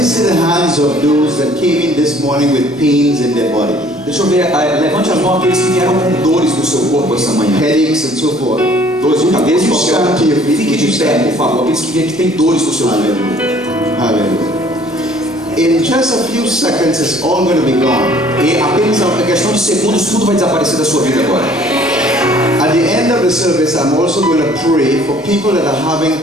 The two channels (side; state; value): both; normal; correlation 0.56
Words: see the hands of those that came in this morning with pains in their body, Deixa eu ver, levante as mãos aqueles que vieram com dores no seu corpo essa manhã. headaches and so forth. Dores de cabeça, Would you stand to your feet? fique de pé, por favor. Aqueles que vêm que têm dores no seu corpo. Hallelujah. Hallelujah. In just a few seconds, it's all going to be gone. E apenas a questão de segundos, tudo vai desaparecer da sua vida agora. At the end of the service, I'm also going to pray for people that are having